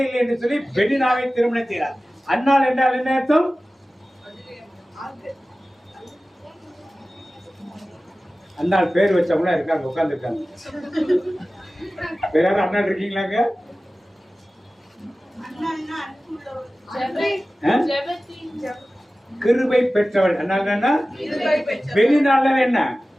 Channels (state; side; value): normal; both; correlation 0.96